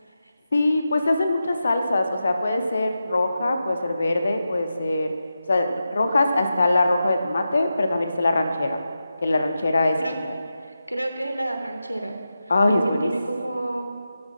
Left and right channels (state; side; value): inverted; both; correlation -0.90